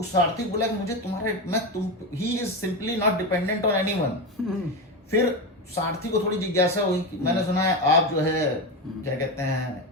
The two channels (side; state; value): both; normal; correlation 0.17